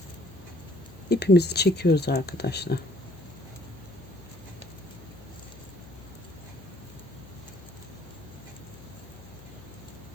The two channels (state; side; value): noise; left; hum, 19 dB below the sound